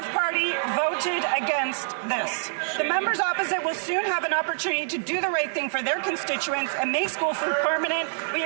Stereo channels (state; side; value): silent; left; digital silence